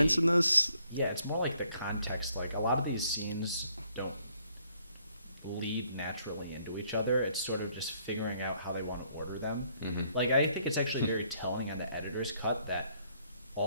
in this. Yeah, it's more like the context. Like a lot of these scenes don't lead naturally into each other. It's sort of just figuring out how they want to order them. Mm-hmm. Like I think it's actually very telling on the editor's cut that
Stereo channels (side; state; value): both; inverted; correlation -0.68